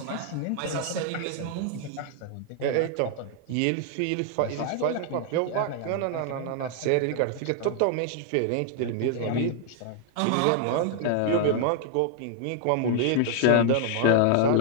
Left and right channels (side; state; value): both; different; correlation 0.00